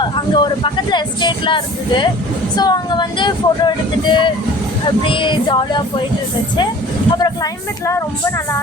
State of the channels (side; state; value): both; normal; correlation 0.45